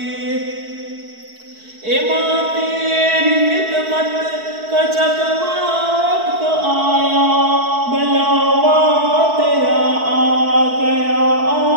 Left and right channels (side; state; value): left; late; 4.6 ms